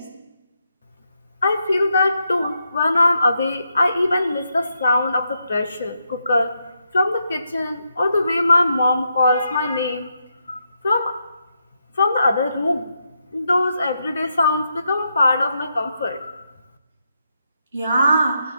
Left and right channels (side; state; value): both; inverted; correlation -0.82